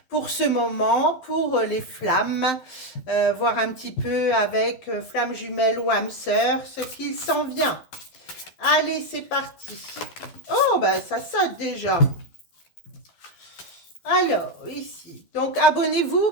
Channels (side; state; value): right; late; 12 ms